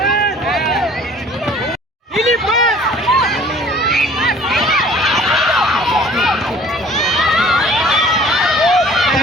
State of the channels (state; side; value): normal; both; correlation 0.51